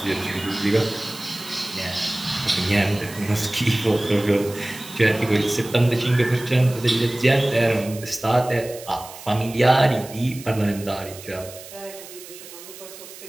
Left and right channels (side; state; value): right; noise; hiss, 16 dB below the sound